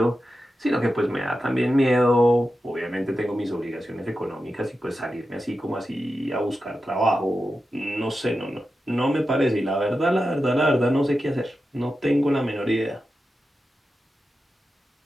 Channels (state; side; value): normal; both; correlation 0.91